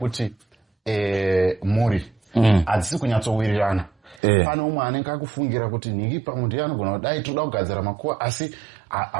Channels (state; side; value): drops out; left; at 4.2 s